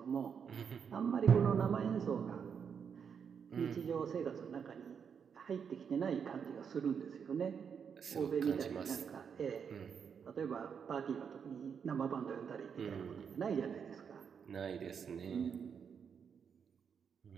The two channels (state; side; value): quieter; left; 7.0 dB